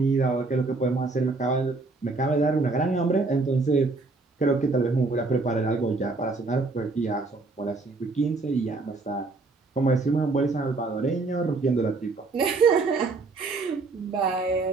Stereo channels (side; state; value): left; quieter; 3.7 dB